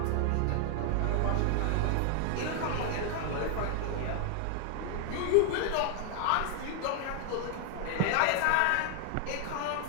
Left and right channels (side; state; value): both; different; correlation 0.00